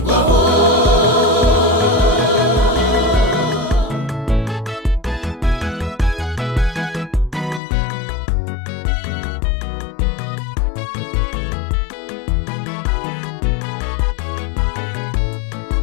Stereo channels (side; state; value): right; drops out; at 7.6 s